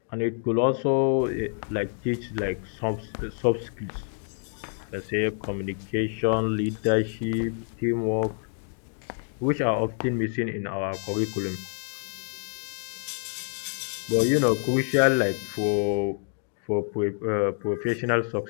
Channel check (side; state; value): right; silent; 60 dB below the other